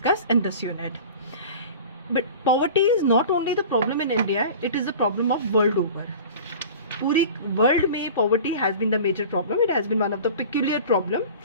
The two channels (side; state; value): both; inverted; correlation -0.39